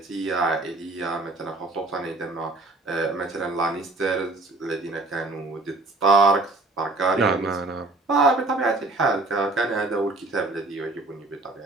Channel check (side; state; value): left; quieter; 3.1 dB